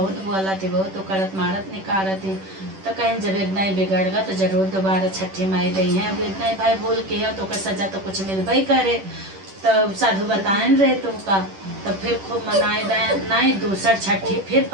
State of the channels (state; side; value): late; left; 10 ms